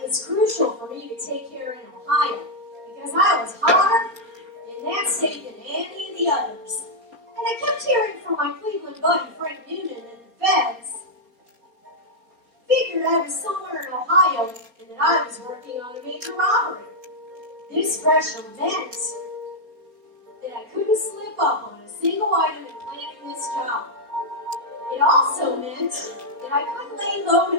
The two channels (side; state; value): left; late; 4.3 ms